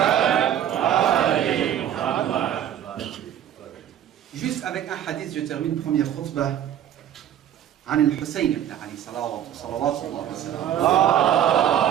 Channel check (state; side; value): quieter; left; 10.6 dB